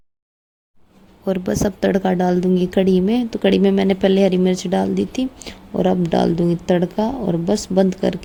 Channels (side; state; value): both; identical; correlation 1.00